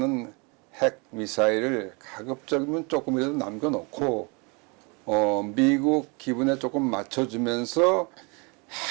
핵 미사일을 가급적이면 조금이라도 남겨놓고 미국 기분에 조금 맞춰주면서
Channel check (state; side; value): quieter; left; 30.9 dB